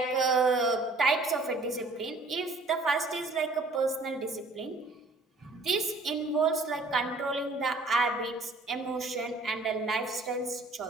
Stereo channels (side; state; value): left; quieter; 3.1 dB